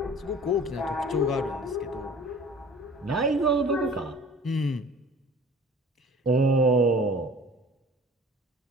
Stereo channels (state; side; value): normal; both; correlation 0.45